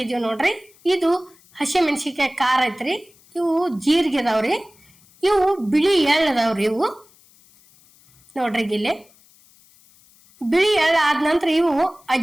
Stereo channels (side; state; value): left; noise; hiss, 29 dB below the sound